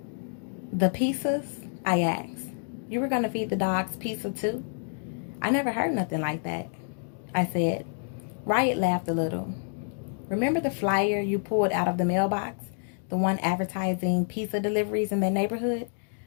"The pizzas?" I asked. "You were going to feed the dogs pizza too?" "I never heard nothing like that," I said. Riot laughed a little. "Remember the flyer you pulled out of the mailbox? The one advertising pizza deliveries in the neighborhood?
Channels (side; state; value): right; silent; digital silence